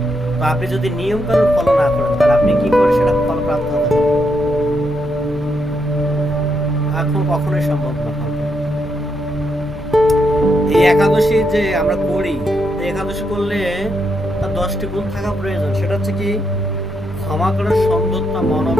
তো আপনি যদি নিয়ম কানুন ফলো না করেন তাহলে আপনি কি করে সেটা ফল প্রাপ্ত হতে পারবেন? এখন কখনোই সম্ভব না। এই একাদশী যে আমরা করি, একাদশী করলে তার 10টি গুণ থাকা প্রয়োজন। সেটা হচ্ছে কি? ক্ষমা করার সৌন্দর্য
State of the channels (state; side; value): normal; both; correlation 0.80